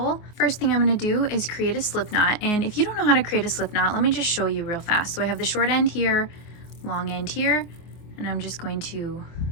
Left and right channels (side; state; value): right; late; 24 ms